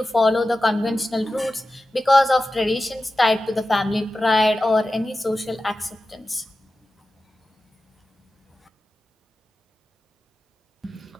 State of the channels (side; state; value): both; normal; correlation 0.94